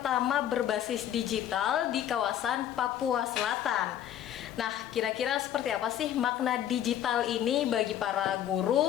berbasis digital di kawasan Papua Selatan. Nah, kira-kira seperti apa sih makna digital ini bagi para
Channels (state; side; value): quieter; right; 10.8 dB